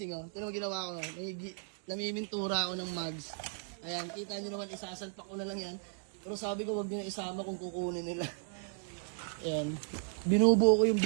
oh. Tinan mo ginawa ko, namimintura ako ng mugs. Ayan, kita nyo naman, isasalpak ko na lang yan. Pero sabi ko, wag nyo na isama kung kukunin nila. Ayan, binubuo ko yung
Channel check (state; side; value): silent; left; digital silence